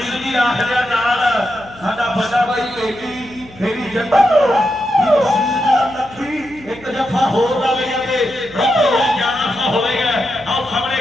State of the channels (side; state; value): left; noise; hum, 22 dB below the sound